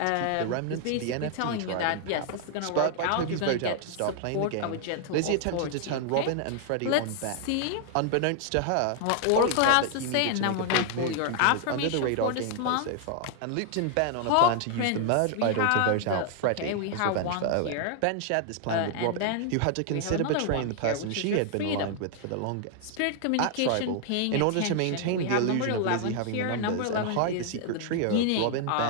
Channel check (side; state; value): both; different; correlation 0.00